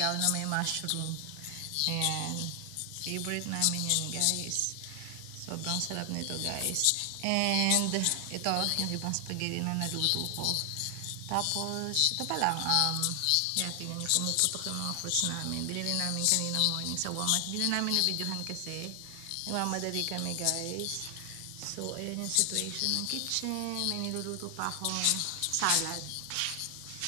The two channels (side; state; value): both; different; correlation 0.00